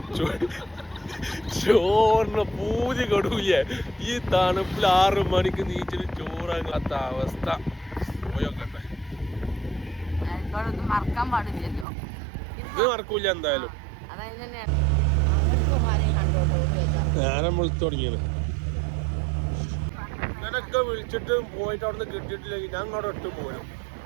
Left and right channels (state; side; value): drops out; left; at 11.9 s